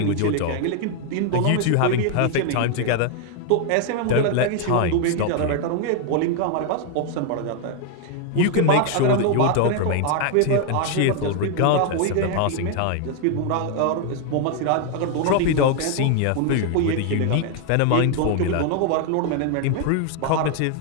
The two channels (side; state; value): both; different; correlation 0.00